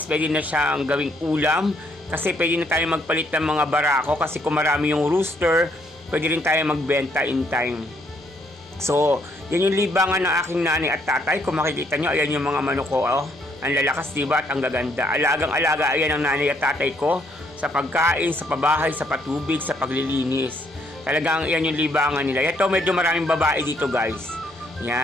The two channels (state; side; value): normal; both; correlation 0.70